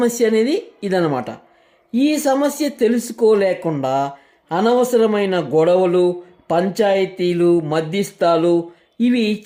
అనేది ఇదన్నమాట. ఈ సమస్య తెలుసుకోలేకుండా అనవసరమైన గొడవలు, పంచాయతీలు, మధ్యస్థాలు ఇవి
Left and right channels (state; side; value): identical; both; correlation 1.00